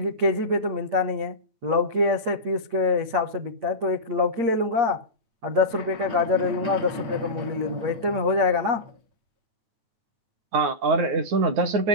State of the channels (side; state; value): left; late; 8.6 ms